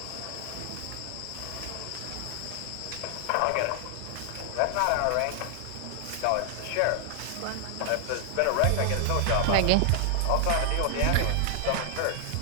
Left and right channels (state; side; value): different; both; correlation 0.00